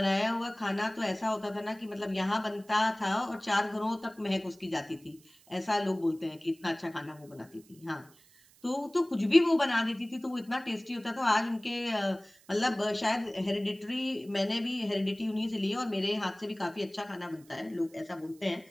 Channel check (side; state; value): right; noise; hiss, 27 dB below the sound